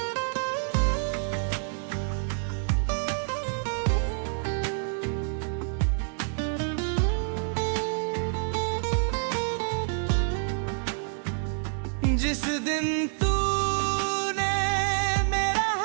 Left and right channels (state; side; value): silent; left; 60 dB below the other